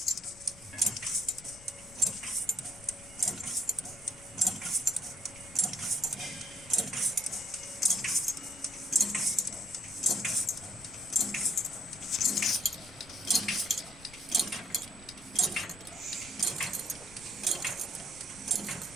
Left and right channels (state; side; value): noise; left; rumble, 20 dB below the sound